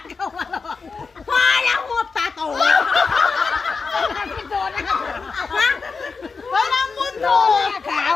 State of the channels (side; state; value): right; quieter; 4.8 dB